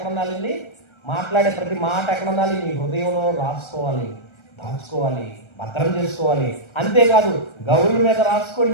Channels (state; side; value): late; right; 1.3 ms